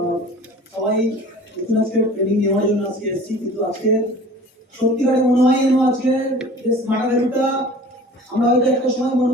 সবাই নতুন আজকে ট্রেনিং নেওয়ার জন্য আজকে এসেছি, কিন্তু আজকে সত্যিকারে মনে হয় যেন আজকে যে স্মার্ট ভ্যালুটা আমরা হয়তো একটা সময় মনে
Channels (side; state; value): both; normal; correlation 0.44